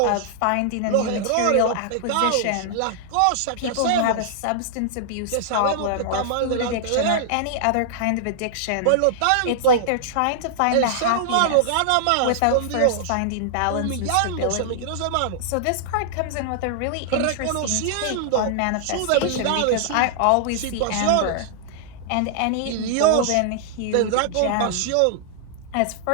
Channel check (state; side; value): different; both; correlation -0.01